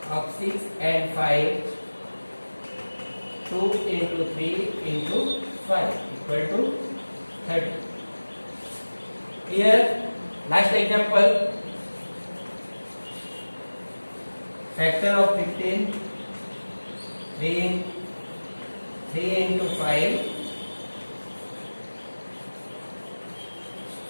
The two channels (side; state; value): both; inverted; correlation -1.00